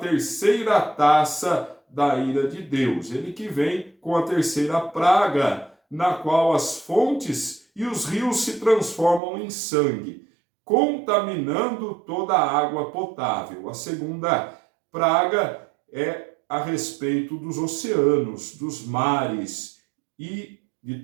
taça da ira de Deus, ele que vem com a terceira praga, na qual as fontes e os rios se transformam em sangue, contaminando toda a água potável. A segunda praga é a respeito dos oceanos, dos mares e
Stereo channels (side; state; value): left; drops out; at 9.2 s